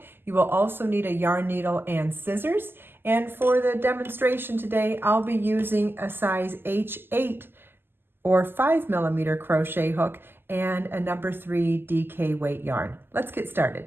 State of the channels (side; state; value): left; late; 0.10 ms